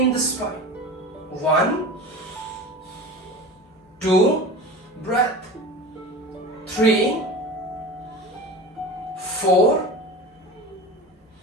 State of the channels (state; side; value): normal; both; correlation 0.33